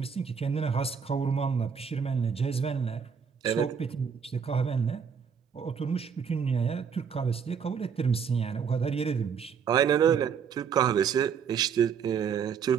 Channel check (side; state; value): left; quieter; 6.8 dB